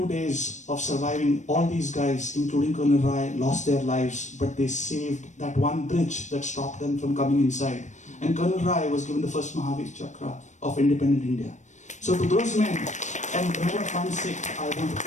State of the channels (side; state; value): right; late; 0.35 ms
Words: days of surviving, all these guys, including Colonel Rai, lost their lives, but they saved that one bridge that stopped them from coming inside. And Colonel Rai was given the first Mahavir Chakra of independent India. So to those men, and remember one Sikh, I want to